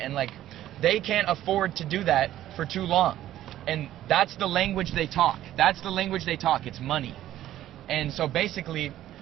like, they can't afford to do that for too long. And that's the language they talk. That's the language they talk. It's money. And so basically,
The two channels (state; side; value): quieter; left; 13.1 dB